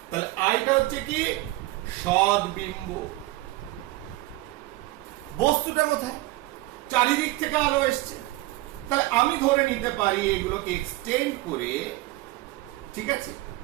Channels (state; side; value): quieter; left; 19.2 dB